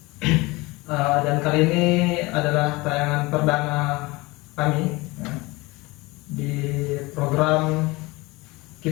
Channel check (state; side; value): quieter; right; 22.9 dB